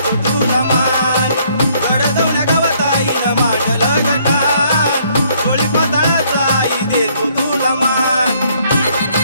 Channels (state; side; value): inverted; both; correlation -0.65